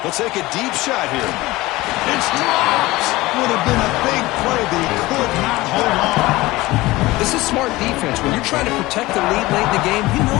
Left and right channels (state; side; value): quieter; right; 19.5 dB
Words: He'll take a deep shot here. It's dropped. Would have been a big play, but he could not hold on. This is smart defense. When you're trying to protect the lead late in the game, you know